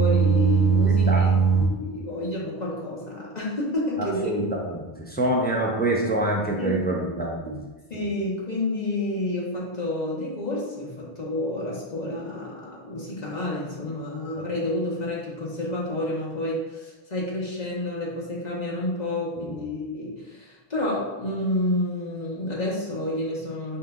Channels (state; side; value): late; right; 2.0 ms